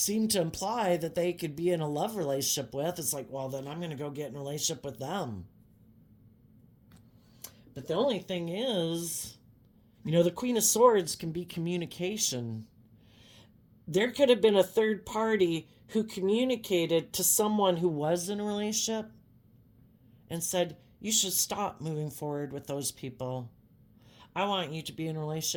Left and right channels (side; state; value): both; identical; correlation 1.00